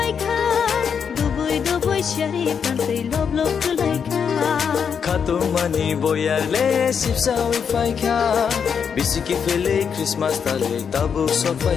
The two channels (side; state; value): right; quieter; 6.9 dB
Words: kha dubui shari pantai lob kulai kha Khatung mani boyar le shipsa oi fai kha bisiki fele Christmas tale tabu so